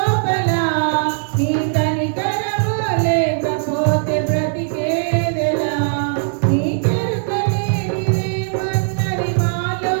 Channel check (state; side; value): silent; left; 61 dB below the other